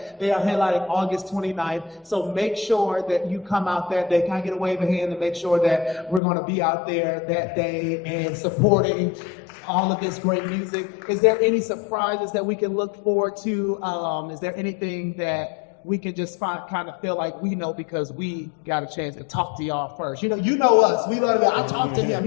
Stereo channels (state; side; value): drops out; right; at 6.2 s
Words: They are headlining August 29th. So make sure that you come out that day. Can I get a wave of hand to make sure that we're going to be out there that day and supporting all of this great music? Is there any surprises that we can look forward to? Is there anything that we can just kind of feel like we know because we got a chance to talk to y'all first? You know us. We love it. I talked to him.